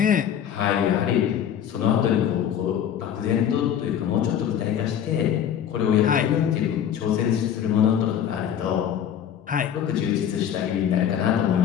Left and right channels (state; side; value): quieter; right; 9.3 dB